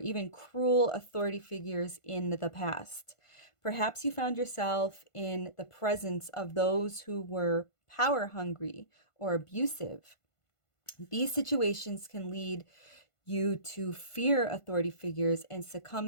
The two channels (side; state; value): right; late; 1.5 ms